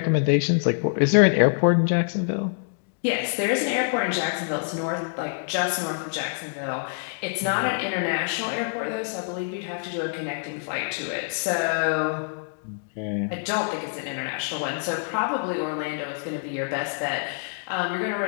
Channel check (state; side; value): silent; right; digital silence